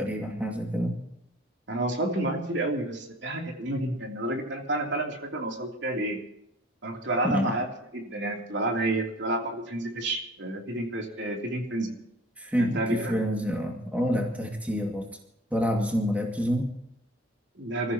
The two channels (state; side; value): normal; both; correlation 0.46